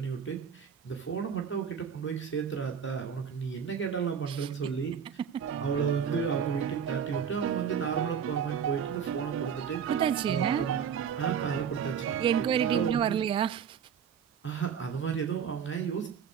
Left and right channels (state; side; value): quieter; left; 7.5 dB